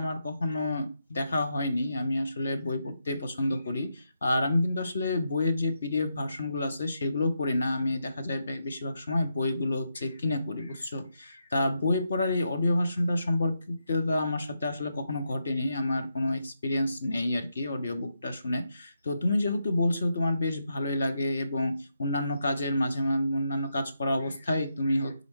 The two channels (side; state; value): both; inverted; correlation -0.83